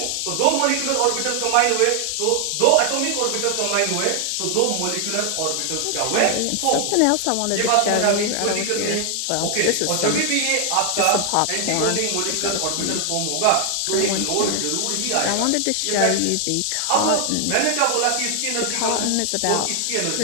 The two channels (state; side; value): different; both; correlation 0.00